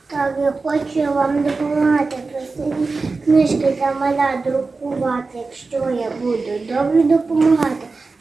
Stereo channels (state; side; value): quieter; left; 4.0 dB